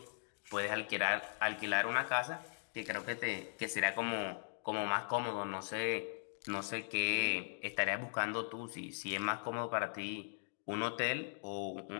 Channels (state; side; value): silent; right; digital silence